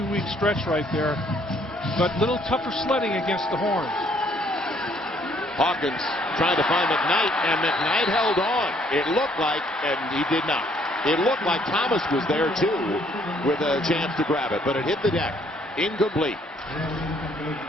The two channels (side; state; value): both; normal; correlation 0.65